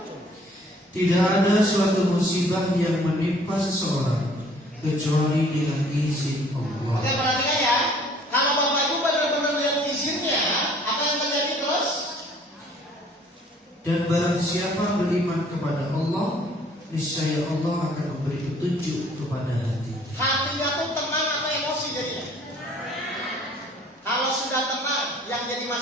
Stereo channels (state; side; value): normal; both; correlation 0.56